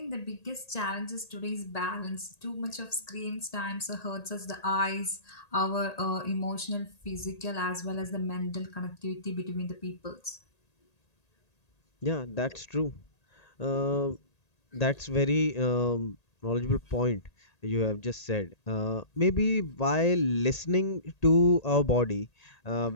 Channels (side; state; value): right; late; 1.8 ms